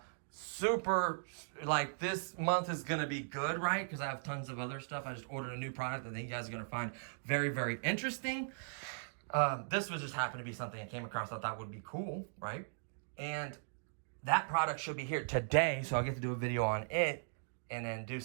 Super, like, this month is going to be good, right? Because I have tons of other stuff. I just ordered a new product I think you guys are going to find very, very interesting. This was just happened to be something I came across I thought would be cool, right? And that product should be here today, so I'll get to do a video on it and then do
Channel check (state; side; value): silent; left; digital silence